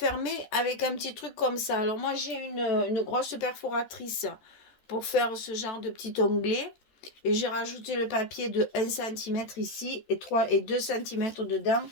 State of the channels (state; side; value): late; right; 14 ms